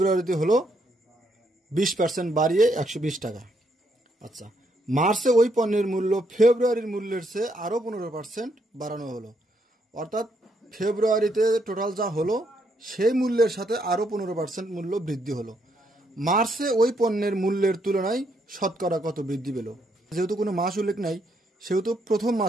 হলো 20% বাড়িয়ে 120 টাকা। আচ্ছা, মার্চে ওই পণ্যের মূল্য ফেব্রুয়ারির মূল্যের চেয়ে আরও 15% বাড়ানো হলো। অর্থাৎ ফেব্রুয়ারিতে টোটাল যা হলো সেই মূল্যের সাথে আরও 15% মূল্য বৃদ্ধি হলো। মার্চে ওই পণ্যের মূল্যের তুলনায় শতকরা কত বৃদ্ধি পেল? যেহেতু কোনো মাস উল্লেখ নাই, সেহেতু প্রথম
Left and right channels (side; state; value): both; normal; correlation 0.75